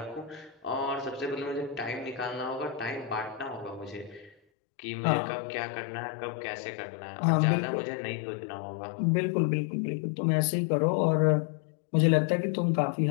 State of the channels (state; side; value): drops out; right; at 4.4 s